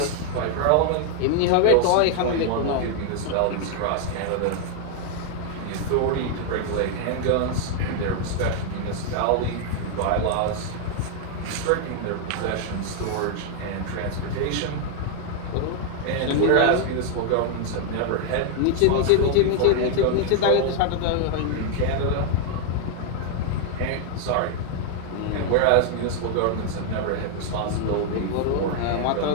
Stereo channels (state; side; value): different; both; correlation 0.00